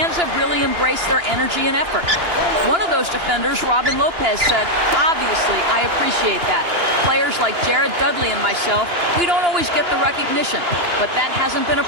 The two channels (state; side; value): late; left; 2.9 ms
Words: have really embraced their energy and effort. One of those defenders, Robin Lopez, said, "Obviously, I appreciate that. Players like Jared Dudley and myself, we don't always get the recognition, but that hasn't been a